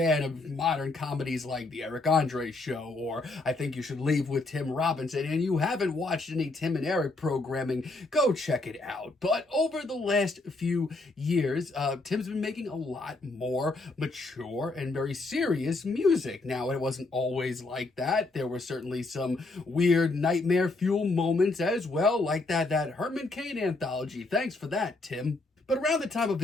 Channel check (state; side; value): quieter; right; 3.2 dB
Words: of modern comedies like The Eric Andre Show or I Think You Should Leave with Tim Robinson and you haven't watched any Tim and Eric programming, go check it out. But over the last few years, Tim's been making a lot more mature and very serious music. Now, it wasn't always like that. There were certainly some weird nightmare fuel moments as well, like that Herman Cain anthology. Thanks for that, Tim. But around the time of